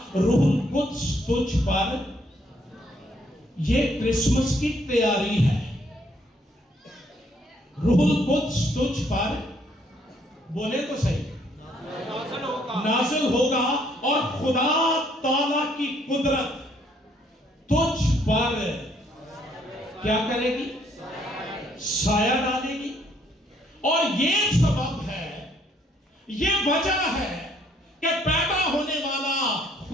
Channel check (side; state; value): both; normal; correlation 0.68